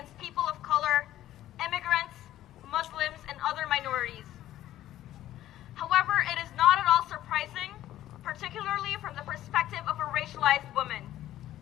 people of color, immigrants, Muslims, and other minorities. However, it is not at all surprising, particularly from the perspective of a racialized woman.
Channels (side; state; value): right; quieter; 13.4 dB